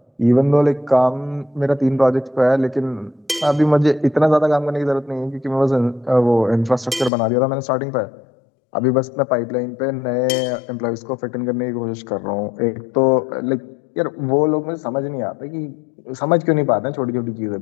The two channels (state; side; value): drops out; right; at 7.1 s